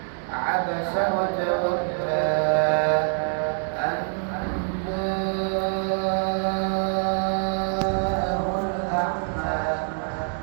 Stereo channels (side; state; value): left; silent; 62 dB below the other